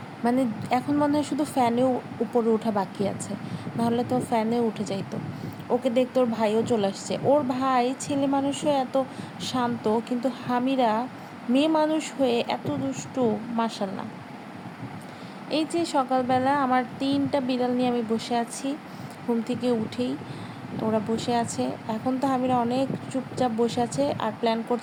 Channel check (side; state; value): both; identical; correlation 1.00